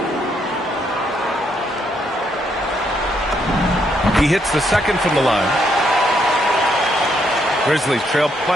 He hits the second from the line. Grizzlies trail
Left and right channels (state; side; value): normal; both; correlation 0.74